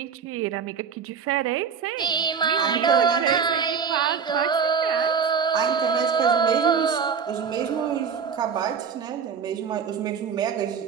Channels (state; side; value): quieter; left; 6.5 dB